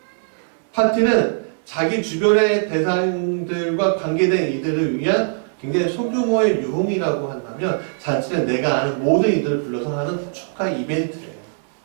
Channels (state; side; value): silent; left; digital silence